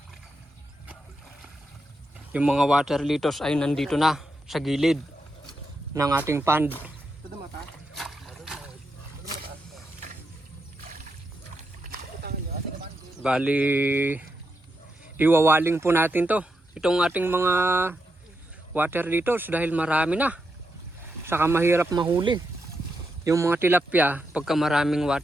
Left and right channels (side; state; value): both; normal; correlation 0.84